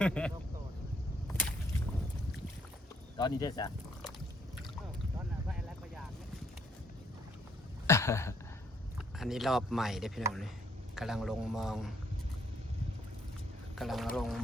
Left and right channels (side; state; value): both; normal; correlation 0.69